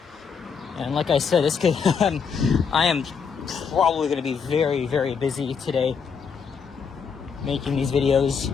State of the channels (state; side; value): quieter; right; 6.2 dB